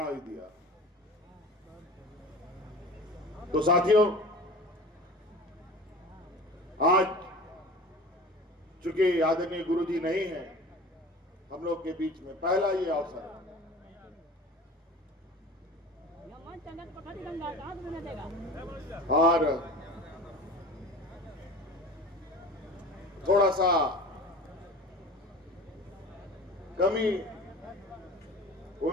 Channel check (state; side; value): normal; both; correlation 0.38